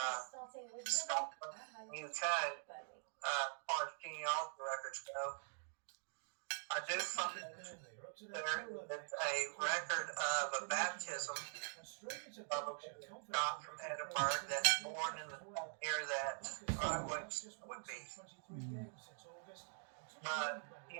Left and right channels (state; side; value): silent; left; digital silence